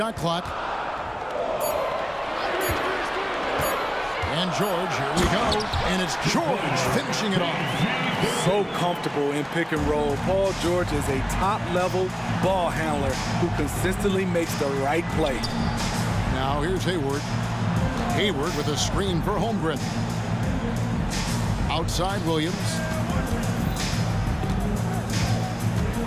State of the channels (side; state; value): both; identical; correlation 1.00